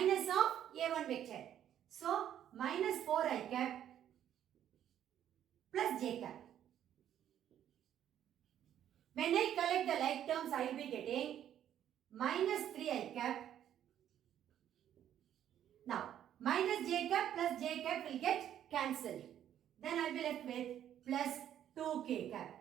of A1 vector. So, minus 4i cap plus j cap. When I collect the like terms, I will be getting minus 3i cap. Now, minus j cap plus j cap will get cancelled. Then I will be left with plus 2k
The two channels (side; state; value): left; quieter; 10.6 dB